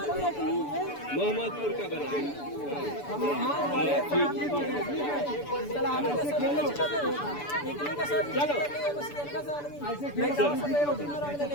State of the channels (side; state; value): right; late; 6.9 ms